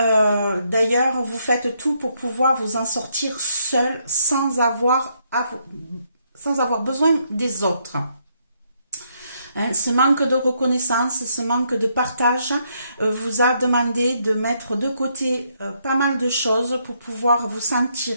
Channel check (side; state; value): both; inverted; correlation -0.75